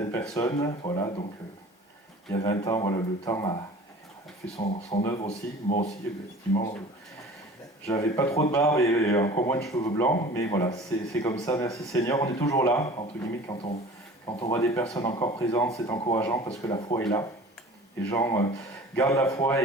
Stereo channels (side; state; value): both; normal; correlation 0.43